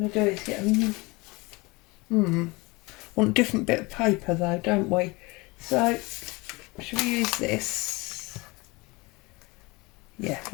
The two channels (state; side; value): quieter; right; 24.9 dB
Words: to do is get want a different bit of paper though, don't we? So should we use this? Yeah,